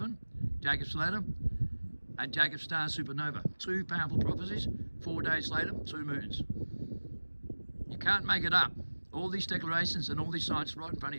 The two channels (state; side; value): inverted; both; correlation -1.00